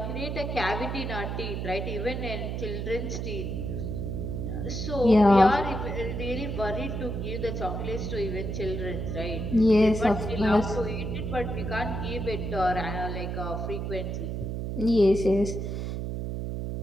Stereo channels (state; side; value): noise; right; hum, 3 dB below the sound